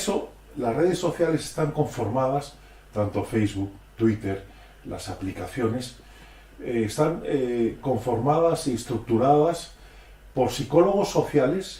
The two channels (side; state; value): both; identical; correlation 1.00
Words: las redes sociales están conformadas, tanto Facebook, Twitter, las aplicaciones, están conformadas y estructuradas por psicólogos